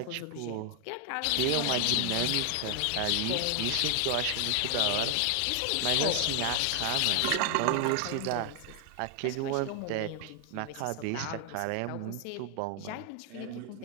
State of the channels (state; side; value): different; both; correlation 0.00